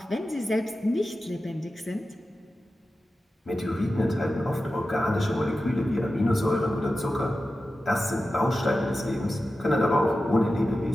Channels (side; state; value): both; normal; correlation 0.93